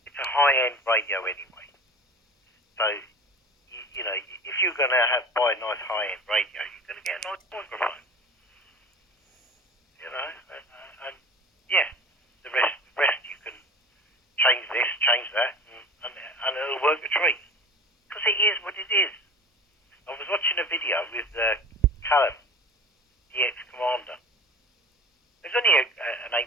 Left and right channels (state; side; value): normal; both; correlation 0.38